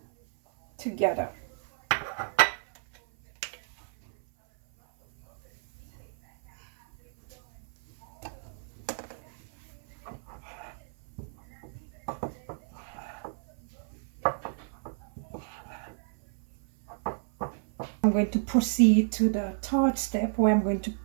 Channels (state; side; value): silent; left; 57 dB below the other